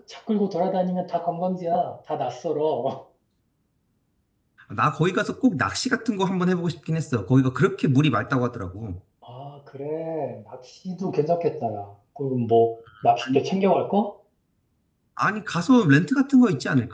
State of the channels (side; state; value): both; identical; correlation 1.00